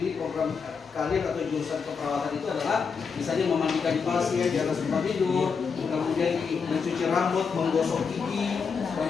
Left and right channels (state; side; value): quieter; right; 5.7 dB